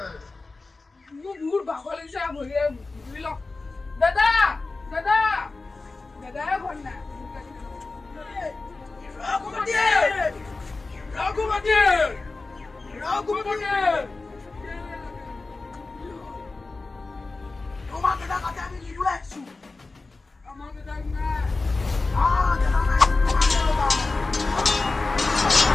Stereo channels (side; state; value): right; quieter; 3.6 dB